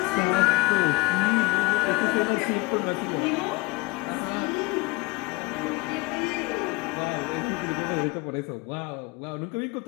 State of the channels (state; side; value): quieter; right; 23.6 dB